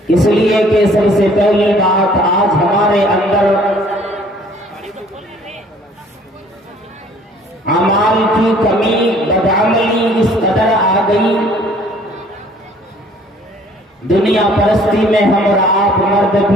इसलिए कि सबसे पहली बात, आज हमारे अंदर अमाल की कमी, बदअमली इस कदर आ गई, दुनिया परस्ती में हम और आप, मर्द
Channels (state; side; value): normal; both; correlation 0.56